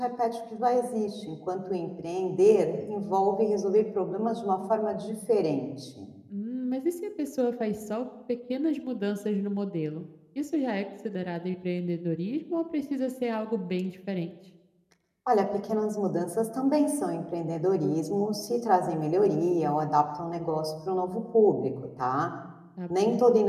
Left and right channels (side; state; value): both; identical; correlation 1.00